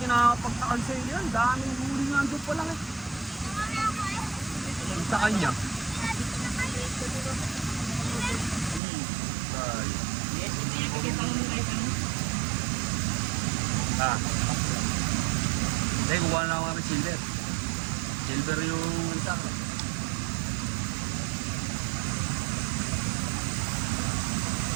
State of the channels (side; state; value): left; drops out; at 8.8 s